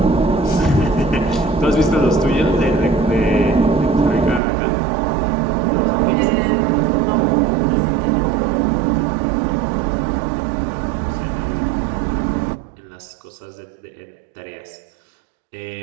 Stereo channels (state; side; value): drops out; left; at 4.4 s